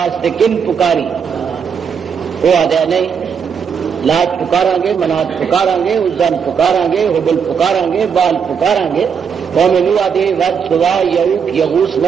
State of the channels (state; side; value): quieter; left; 6.8 dB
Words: کن پکاری وہ آدھا نہیں لات پکارا گے منات پکارا گے عزن پکارا گے حبل پکارا گے بال پکارا گے قوم نوح آدھے ود سوا یعوق یغوث